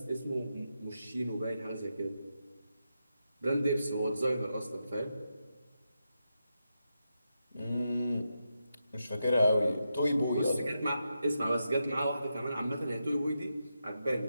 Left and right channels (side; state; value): both; inverted; correlation -0.86